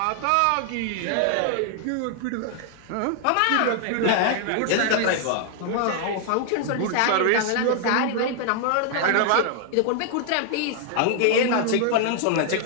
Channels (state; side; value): different; both; correlation 0.00